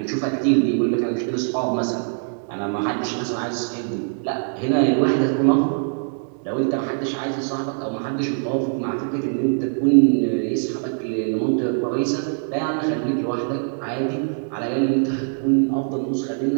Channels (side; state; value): left; silent; digital silence